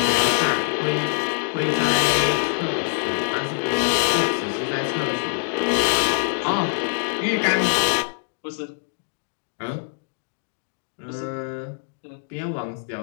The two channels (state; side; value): silent; right; digital silence